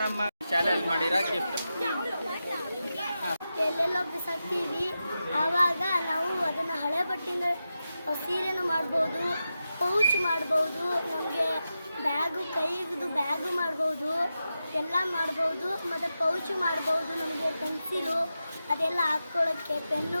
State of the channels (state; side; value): inverted; both; correlation -0.91